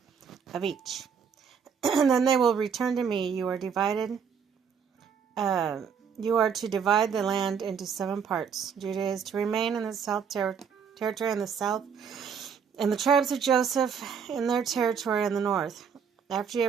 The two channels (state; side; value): quieter; left; 6.8 dB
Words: of each. And then they will return to me. You are to divide the land into 7 parts. Judah is to remain in the south territory in the south, and the tribes of Joseph in their territory in the north. After you